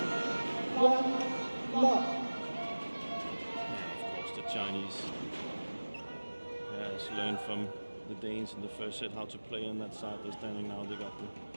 From the Danes in the first set how to play on that side. They're standing now. They got the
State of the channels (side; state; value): both; inverted; correlation -1.00